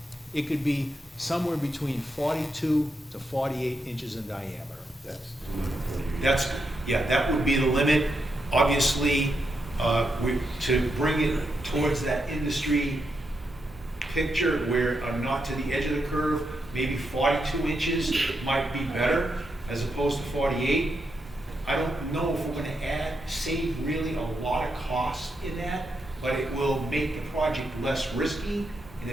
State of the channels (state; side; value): normal; both; correlation 0.83